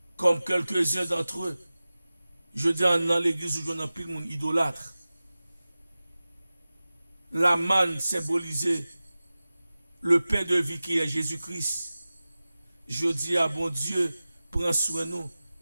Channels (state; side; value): inverted; both; correlation -0.96